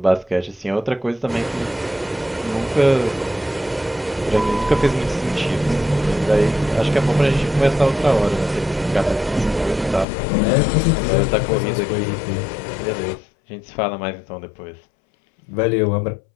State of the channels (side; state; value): right; drops out; at 10.1 s